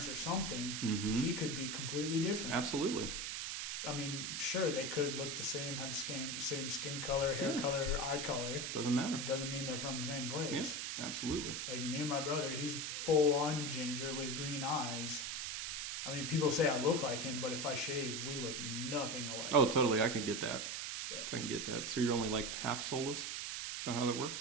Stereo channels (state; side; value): noise; right; hiss, 3 dB below the sound